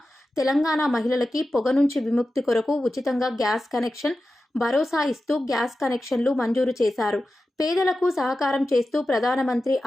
తెలంగాణ మహిళలకి పొగ నుంచి విముక్తి కొరకు ఉచితంగా గ్యాస్ కనెక్షన్ భరోసా ఇస్తూ గ్యాస్ కనెక్షన్లు మంజూరు చేశారు. పేదలకు సహకారం చేస్తూ ప్రధానమంత్రి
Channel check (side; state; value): both; normal; correlation 0.93